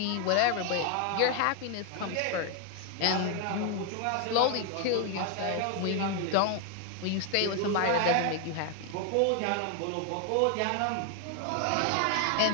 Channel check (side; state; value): both; different; correlation 0.00